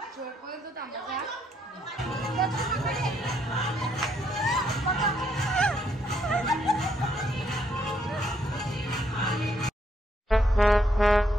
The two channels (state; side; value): normal; both; correlation 0.73